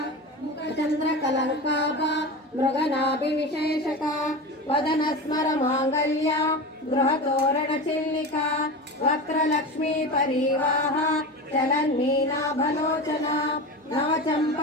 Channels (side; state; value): both; normal; correlation 0.26